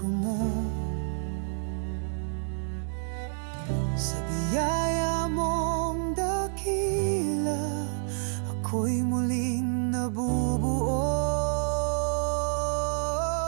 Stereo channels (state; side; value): silent; left; 59 dB below the other